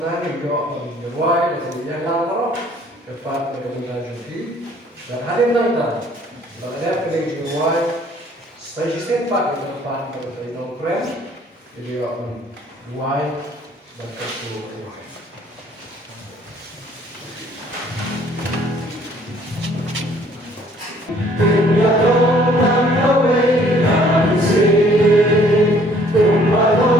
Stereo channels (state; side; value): normal; both; correlation 0.59